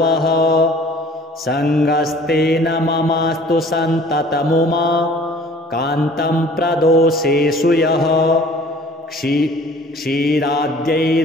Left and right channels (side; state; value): both; normal; correlation 0.51